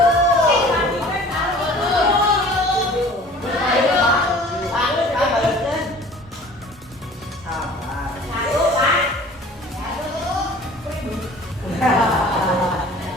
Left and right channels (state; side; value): normal; both; correlation 0.47